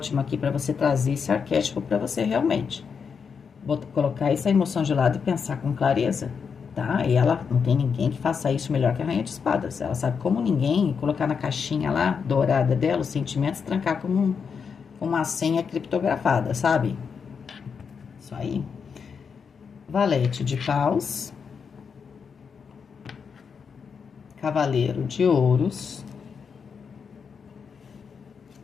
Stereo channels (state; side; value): quieter; right; 6.2 dB